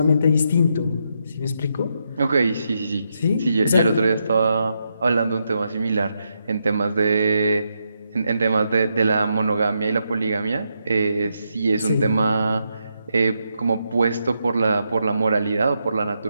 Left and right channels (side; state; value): both; inverted; correlation -0.82